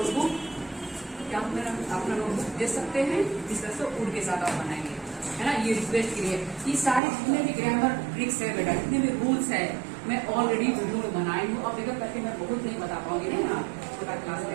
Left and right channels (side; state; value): left; drops out; at 7.0 s